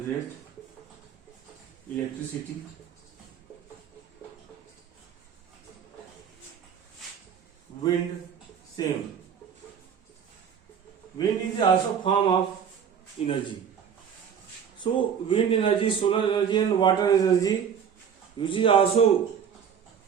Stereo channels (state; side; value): quieter; left; 7.7 dB